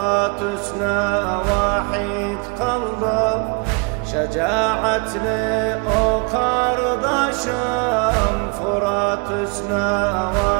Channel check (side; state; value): left; quieter; 32.7 dB